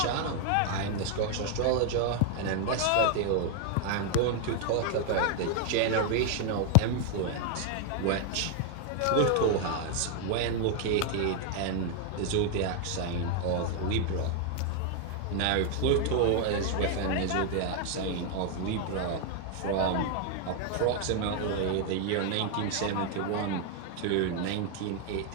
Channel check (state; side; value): different; both; correlation 0.00